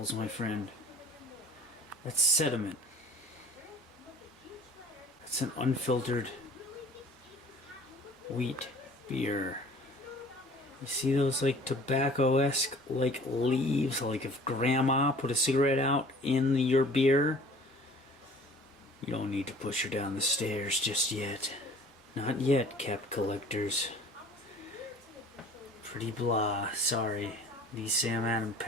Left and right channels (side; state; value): both; normal; correlation 0.48